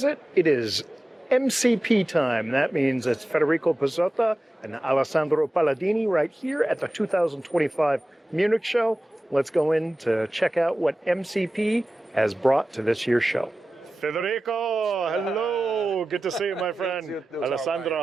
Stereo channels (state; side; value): normal; both; correlation 0.95